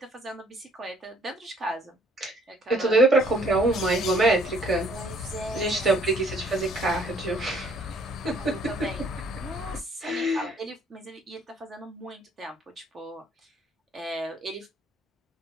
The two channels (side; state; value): both; normal; correlation 0.61